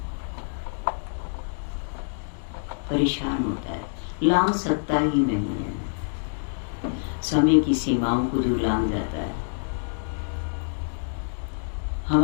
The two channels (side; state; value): right; silent; digital silence